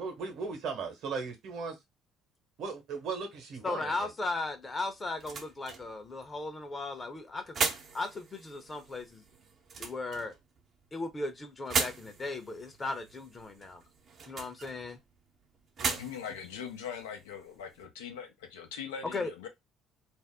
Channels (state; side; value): normal; both; correlation 0.67